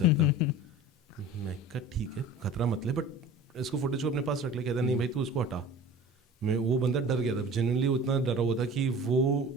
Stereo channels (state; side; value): normal; both; correlation 0.40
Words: मैं कहा ठीक है खतरा मत ले, बट इसको फुटेज को अपने पास रख ले। कहता नहीं भाई तू इसको हटा। वो बंदा डर गया था, जेन्युइनली उतना डरा हुआ था कि वो